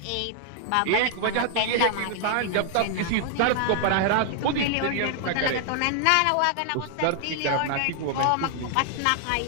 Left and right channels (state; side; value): different; both; correlation 0.00